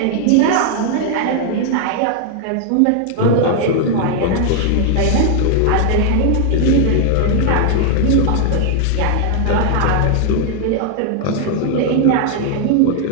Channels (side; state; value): both; different; correlation 0.00